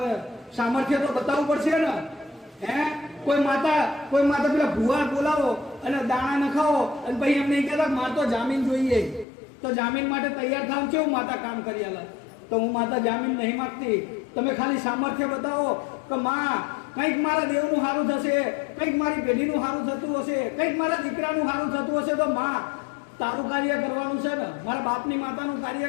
સામર્થ્ય તો બતાવવું પડશે ને. કોઈ માતા પેલા ભુવા બોલાવો અને દાણા નખાવો અને પછી એમ નહીં કહેતા મારે તો જામીન જોઈએ, તો જામીન માટે તૈયાર થાવ કેવું માતા કામ કરી આલે. તો હું માતા જામીન નહીં માંગતી. તમે ખાલી સામર્થ્ય બતાવો કે માં કંઈક મારા દેવનું સારું થશે, કંઈક મારી પેઢીનું સારું થતું હશે, કંઈક મારા દીકરાનું સારું થતું હશે, તો માં તારું કાર્ય કરવાનું છે ને, મારા બાપની માતાનું કાર્ય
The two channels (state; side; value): drops out; right; at 9.2 s